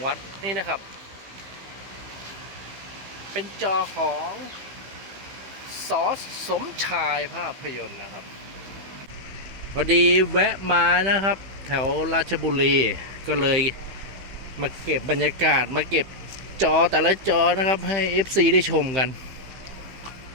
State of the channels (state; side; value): late; left; 15 ms